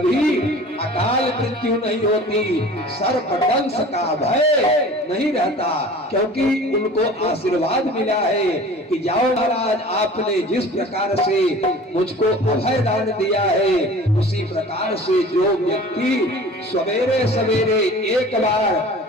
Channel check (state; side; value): normal; both; correlation 0.43